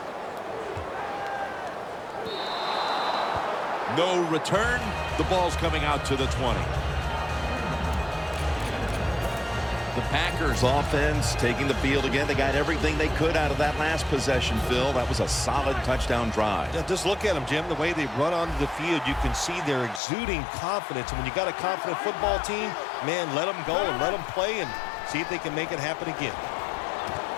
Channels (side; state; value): right; drops out; at 20.0 s